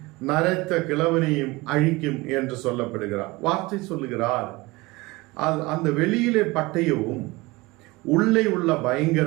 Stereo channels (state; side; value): quieter; left; 21.8 dB